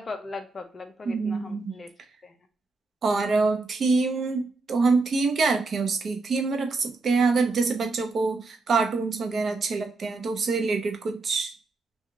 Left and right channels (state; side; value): quieter; left; 3.7 dB